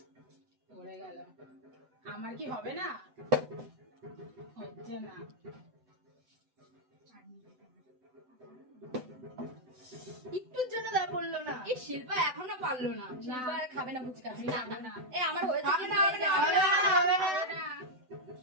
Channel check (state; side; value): late; left; 7.9 ms